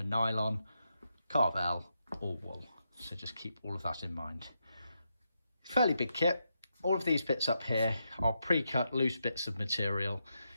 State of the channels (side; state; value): both; inverted; correlation -0.84